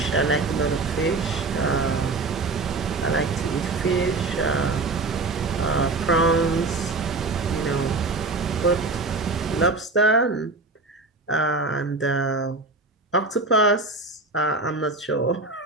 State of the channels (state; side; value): quieter; left; 3.5 dB